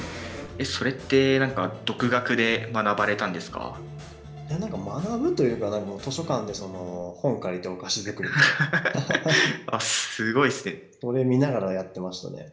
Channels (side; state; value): both; identical; correlation 1.00